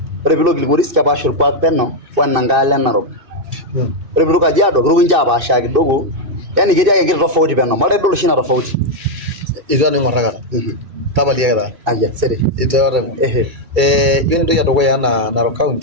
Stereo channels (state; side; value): late; left; 2.6 ms